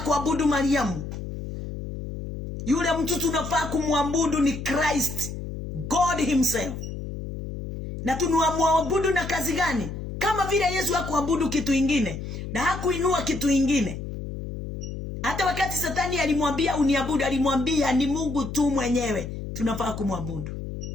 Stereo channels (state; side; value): noise; left; hum, 8 dB below the sound